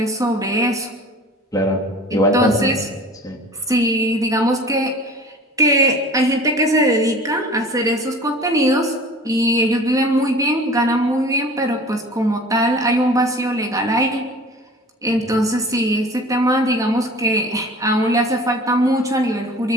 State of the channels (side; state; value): both; normal; correlation 0.42